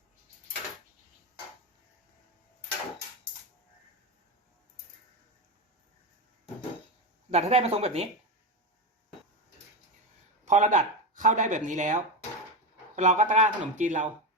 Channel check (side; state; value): both; normal; correlation 0.16